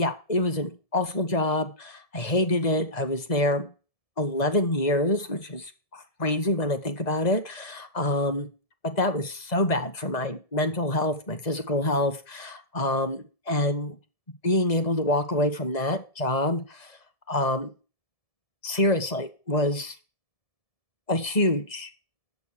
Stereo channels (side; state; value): right; late; 1.7 ms